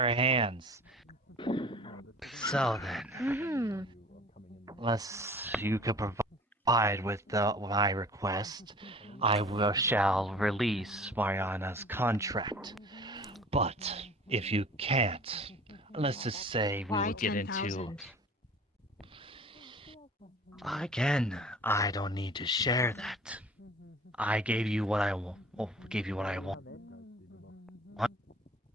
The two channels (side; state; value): both; normal; correlation 0.45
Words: hands. So then, unless you could provide with my request, I shall release Mariana's contract. But if you can't, let's just say we Why will get 10,000? into... Again, I don't need to share that. I gave you what I want.